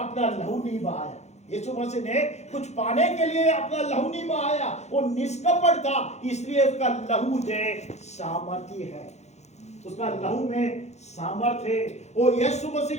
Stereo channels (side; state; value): right; late; 0.32 ms